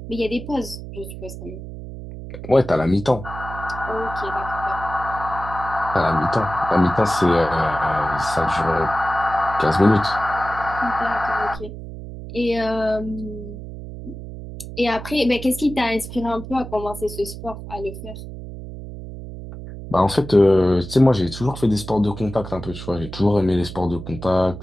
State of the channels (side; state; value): right; noise; hum, 11 dB below the sound